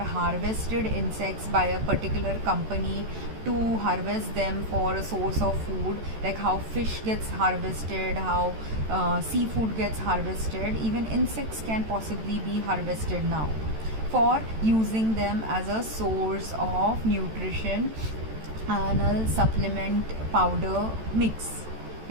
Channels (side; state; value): left; late; 14 ms